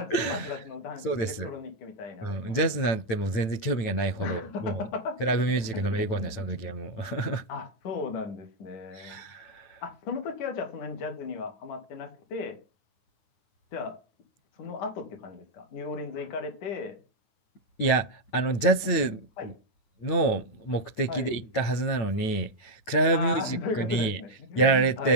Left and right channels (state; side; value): late; right; 9.0 ms